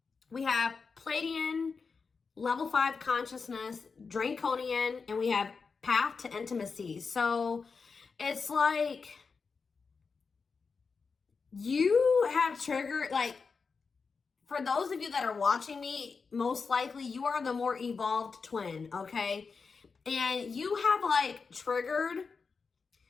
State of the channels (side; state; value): right; quieter; 5.0 dB